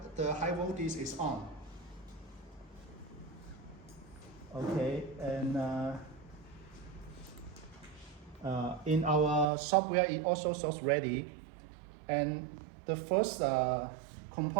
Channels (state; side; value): drops out; left; at 9.5 s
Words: high voltage is on. Okay, and in our software it also shows ready. And the first